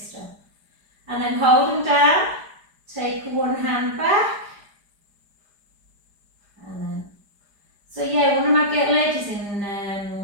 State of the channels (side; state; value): left; late; 4.9 ms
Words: And then hold them down, take one hand back, and then, so yeah, one of my ladies in